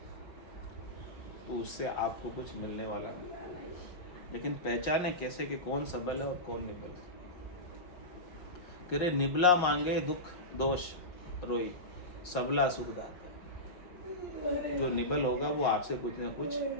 तो उससे आपको कुछ मिलने वाला नहीं, लेकिन पहचाने कैसे कि कौन सबल है और कौन निबल है। कह रहे निबला मांगे दुख दोष रोई सबला सुख दाता। जो निबल होगा वो आपसे कुछ ना कुछ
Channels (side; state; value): right; late; 5.6 ms